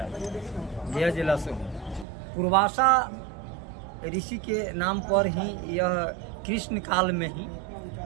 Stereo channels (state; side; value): drops out; left; at 2.1 s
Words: गया जिला से हूँ। पूर्वासा ऋषि के नाम पर ही यह कृष्ण काल में ही